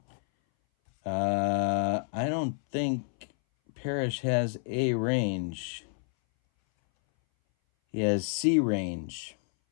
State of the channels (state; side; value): silent; right; 58 dB below the other